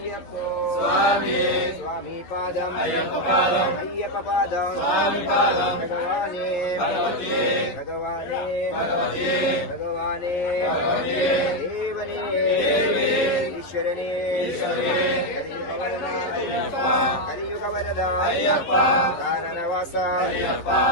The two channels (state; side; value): late; right; 11 ms